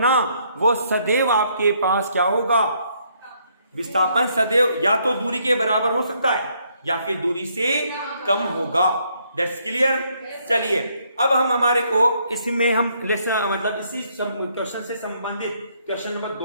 वो सदैव आपके पास क्या होगा, विस्थापन सदैव या तो दूरी के बराबर हो सकता है या फिर दूरी से कम होगा। That's clear. चलिए अब हम हमारे को इसमें हम लेसन मतलब इसी क्वेश्चन से संबंधित क्वेश्चन नंबर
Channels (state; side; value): inverted; both; correlation -0.71